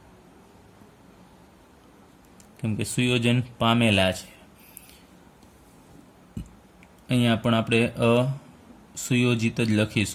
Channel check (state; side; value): identical; both; correlation 1.00